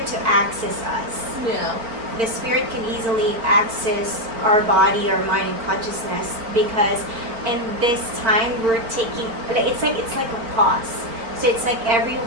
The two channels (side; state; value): left; late; 4.4 ms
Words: to access us. Yeah. The spirit can easily access our body, our mind, and consciousness because in this time we're taking it's like a pause. So it's like